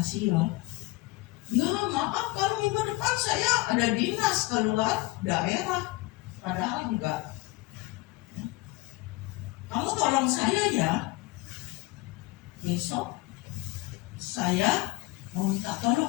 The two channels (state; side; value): quieter; right; 20.7 dB